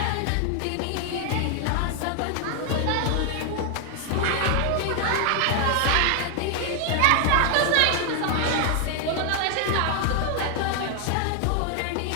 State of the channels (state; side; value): different; both; correlation 0.00